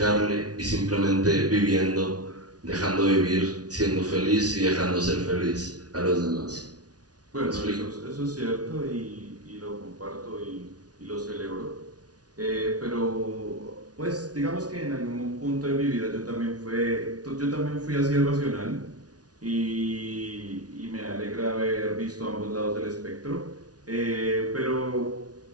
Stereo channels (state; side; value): late; left; 0.68 ms